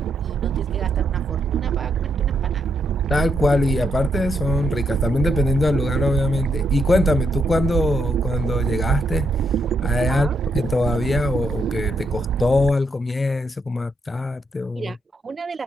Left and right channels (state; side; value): normal; both; correlation 0.79